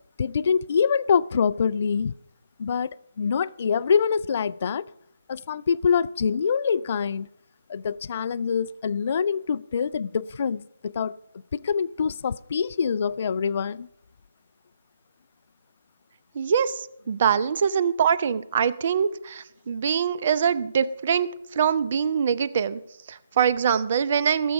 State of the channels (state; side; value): inverted; both; correlation -0.69